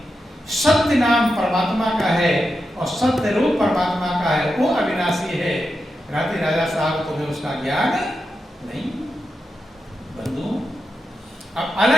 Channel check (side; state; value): both; normal; correlation 0.88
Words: सत्य नाम परमात्मा का है और सत्य रूप परमात्मा का है, वो अविनाशी है। राजा साहब तुम्हें उसका ज्ञान नहीं। बंधु, अब